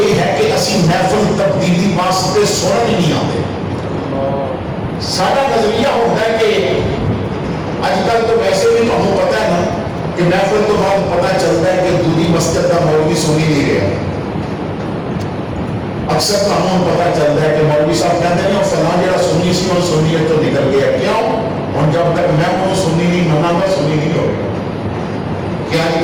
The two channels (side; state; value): both; identical; correlation 1.00